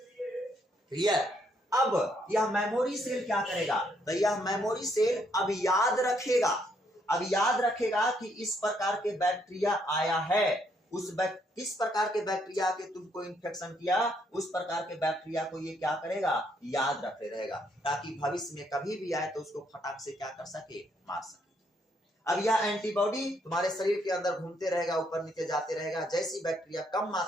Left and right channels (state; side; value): normal; both; correlation 0.72